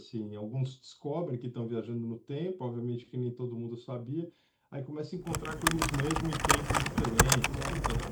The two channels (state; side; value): identical; both; correlation 1.00